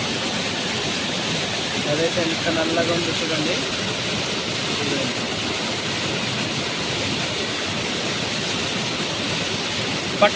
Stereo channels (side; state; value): both; identical; correlation 1.00